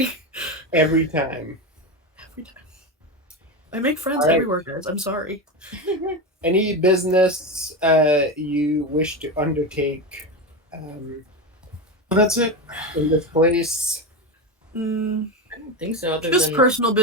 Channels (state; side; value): normal; both; correlation 0.18